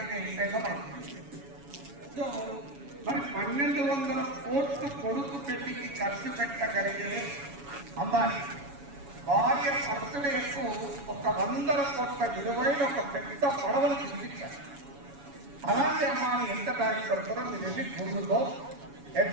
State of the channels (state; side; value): late; left; 7.1 ms